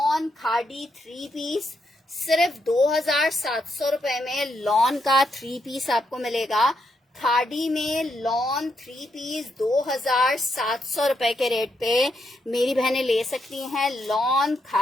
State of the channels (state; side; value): normal; both; correlation 0.80